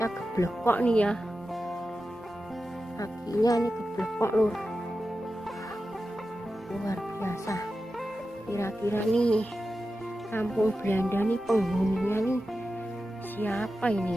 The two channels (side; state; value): both; normal; correlation 0.92